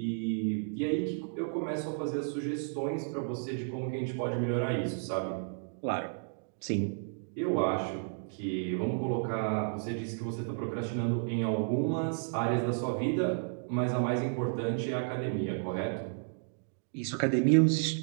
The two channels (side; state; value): left; silent; digital silence